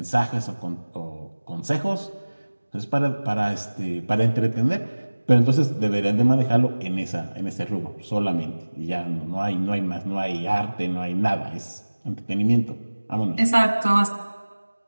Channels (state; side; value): inverted; both; correlation -1.00